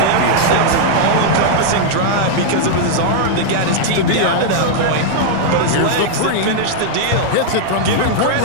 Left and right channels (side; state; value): both; different; correlation -0.01